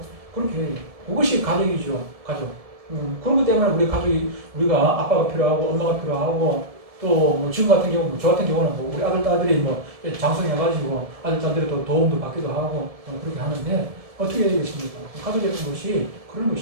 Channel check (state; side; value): late; left; 1.7 ms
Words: 그렇게 해요. 그것이 가족이죠. 가족. 그렇기 때문에 우리가 아빠가 필요하고, 엄마가 필요하고, 또 지금 같은 경우, 저 같은 경우는 우리 아들, 딸들이 장성해가지고 아들, 딸들이 또 도움도 받기도 하고, 그렇게 하는데, 어떻게 해야 되겠습니까? 가족의 것이 그런